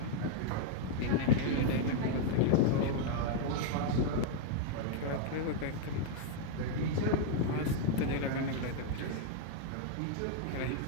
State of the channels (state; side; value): different; both; correlation 0.00